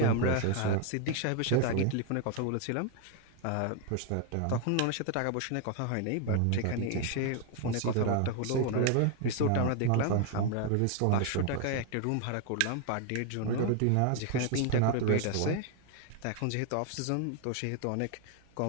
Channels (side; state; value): both; different; correlation 0.00